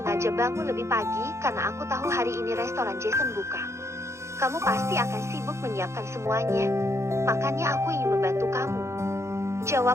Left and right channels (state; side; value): late; left; 0.14 ms